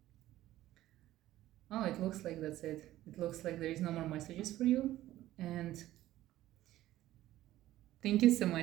Oh, it looks like that's it. It looks like there is no more messages for you. And thank you so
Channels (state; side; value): quieter; left; 14.7 dB